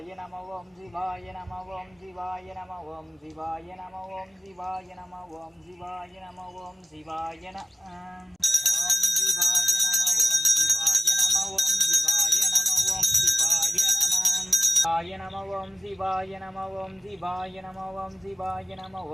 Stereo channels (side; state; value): both; normal; correlation 0.95